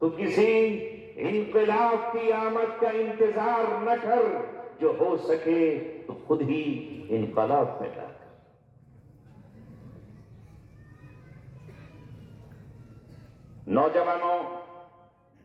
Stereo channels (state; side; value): identical; both; correlation 1.00